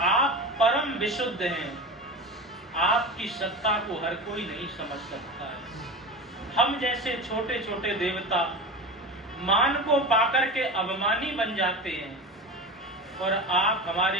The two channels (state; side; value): normal; both; correlation 0.28